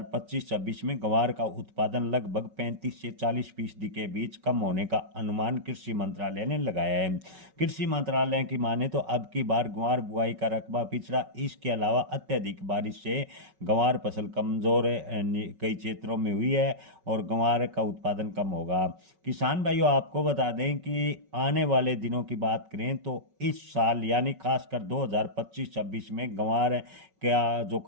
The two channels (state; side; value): late; left; 5.3 ms